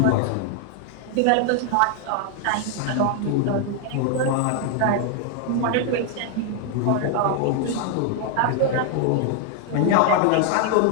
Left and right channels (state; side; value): different; both; correlation 0.00